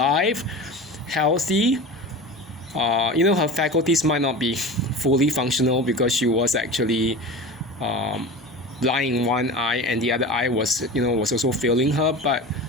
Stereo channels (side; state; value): both; normal; correlation 0.32